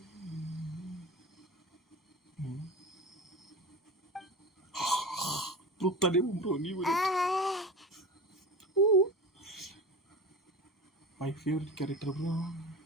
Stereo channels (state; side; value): normal; both; correlation 0.30